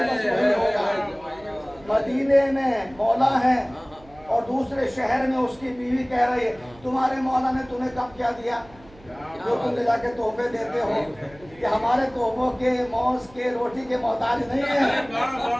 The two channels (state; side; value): noise; right; hum, 24 dB below the sound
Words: مدینے میں مولا ہے اور دوسرے شہر میں اس کی بیوی کہہ رہی ہے تمہارے مولا نے تمہیں کب کیا دیا جو تم لے جا کے تحفے دیتے ہو، کہ ہمارے تحفوں کے، موز کے، روٹی کے محتاج نہیں ہیں،